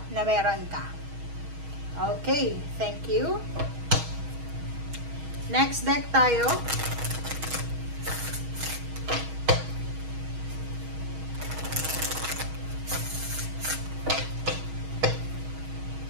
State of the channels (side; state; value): left; late; 6.3 ms